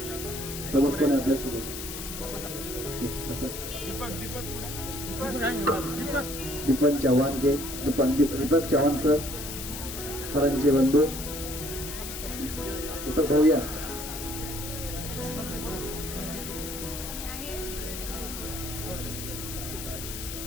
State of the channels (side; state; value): left; noise; hiss, 8 dB below the sound